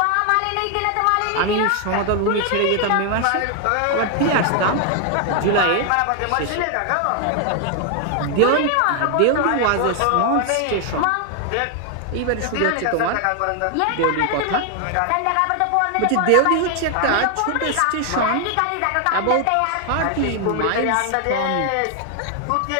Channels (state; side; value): different; both; correlation 0.00